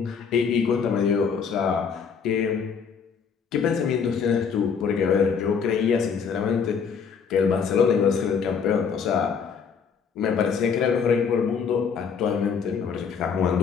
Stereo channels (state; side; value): quieter; right; 6.3 dB